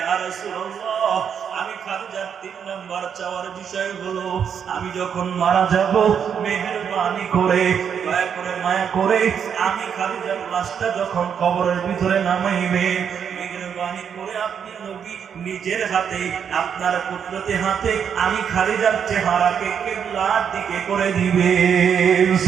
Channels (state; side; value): quieter; left; 7.7 dB